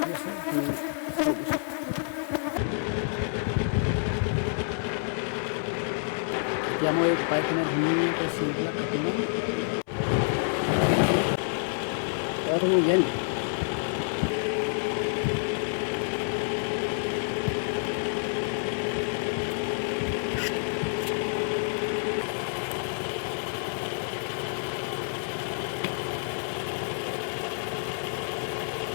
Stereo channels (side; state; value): right; silent; 59 dB below the other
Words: আছে। এতিয়া মই এই পাইপখিনি ধুনীয়াকৈ চিলবিলাক কাটি লওঁ। তুমি উলিয়াই নি?